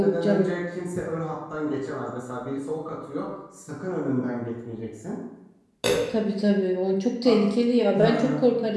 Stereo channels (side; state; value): both; identical; correlation 1.00